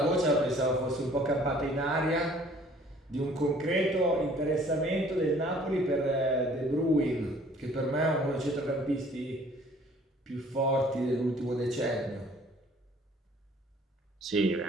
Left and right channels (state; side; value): normal; both; correlation 0.55